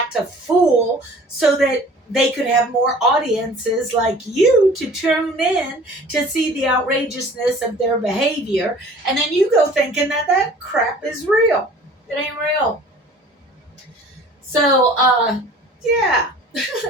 a fool so that they could have more audiences like you to tune in to see the outrageousness of their behavior. And then you go thinking that that crap is real. It ain't real. So, yeah.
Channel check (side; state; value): both; normal; correlation 0.48